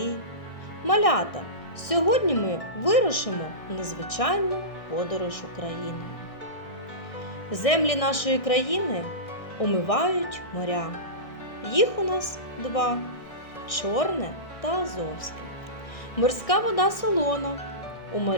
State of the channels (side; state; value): right; late; 1.6 ms